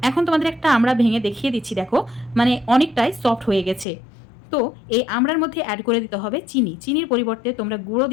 এখন তোমাদের একটা আমড়া ভেঙে দেখিয়ে দিচ্ছি, দেখো মানে অনেকটাই সফট হয়ে গেছে। তো এই আমড়ার মধ্যে অ্যাড করে দিতে হবে চিনি। চিনির পরিবর্তে তোমরা গুঁড়ো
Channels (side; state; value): right; drops out; at 3.9 s